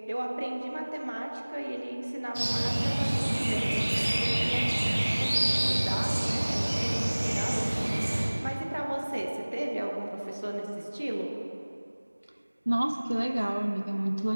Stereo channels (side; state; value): both; inverted; correlation -1.00